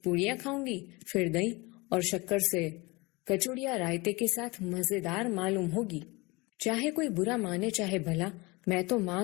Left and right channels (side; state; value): right; quieter; 24.8 dB